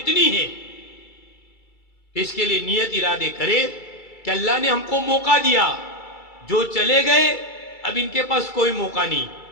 ہے۔ اس کے لیے نیت ارادے کرے کہ اللہ نے ہم کو موقع دیا، جو چلے گئے اب ان کے پاس کوئی موقع نہیں،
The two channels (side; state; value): right; late; 2.3 ms